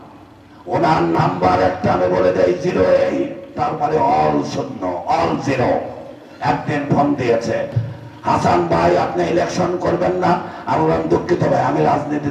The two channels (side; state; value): both; identical; correlation 1.00